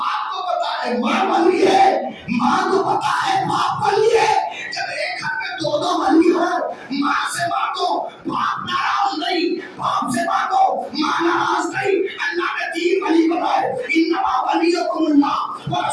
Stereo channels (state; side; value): identical; both; correlation 1.00